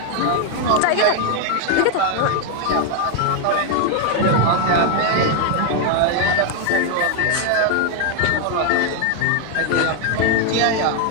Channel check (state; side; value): different; both; correlation 0.00